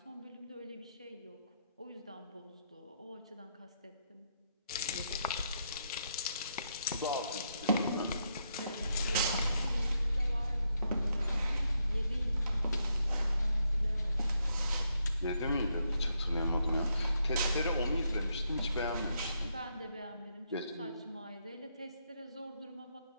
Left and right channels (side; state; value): both; inverted; correlation -0.78